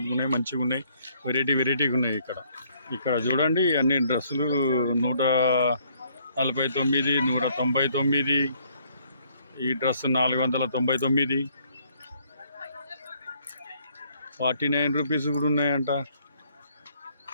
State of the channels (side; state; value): both; inverted; correlation -0.65